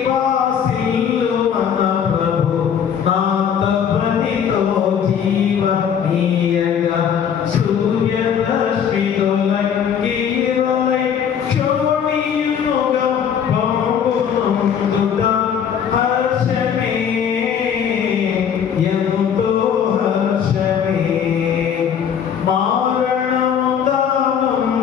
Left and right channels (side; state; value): right; quieter; 8.0 dB